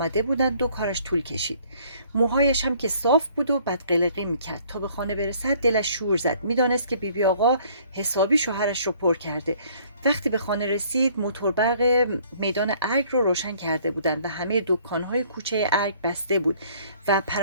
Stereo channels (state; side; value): inverted; both; correlation -0.59